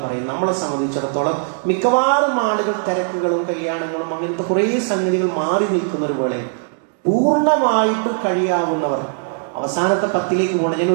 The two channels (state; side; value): silent; left; digital silence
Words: പറയുന്നത് നമ്മളെ സംബന്ധിച്ചിടത്തോളം മിക്കവാറും ആളുകൾ തിരക്കുകളും കല്യാണങ്ങളും അങ്ങനത്തെ കുറേ സംഗതികൾ മാറി നിൽക്കുന്ന ഒരു വേളയിൽ പൂർണ്ണമായിട്ട് കഴിയാവുന്നവർ അവസാനത്തെ 10ലേക്ക് പോകണം. ഞാൻ